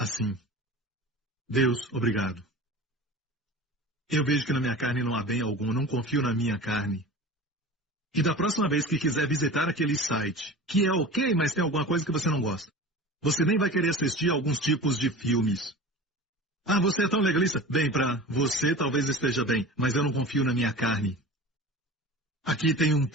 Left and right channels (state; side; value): normal; both; correlation 0.35